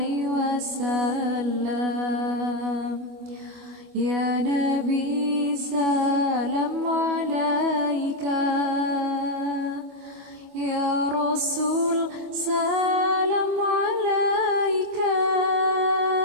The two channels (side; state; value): left; late; 25 ms